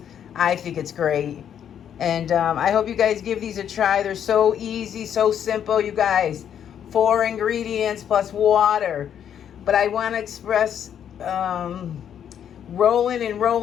I think it's great. And I hope you guys give these a try. They're so easy, so simple, you guys. 4 ingredients plus water. But I want to express rolling and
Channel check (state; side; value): quieter; right; 9.1 dB